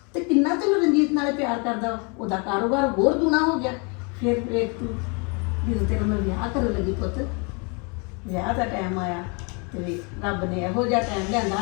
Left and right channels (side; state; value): right; quieter; 33.2 dB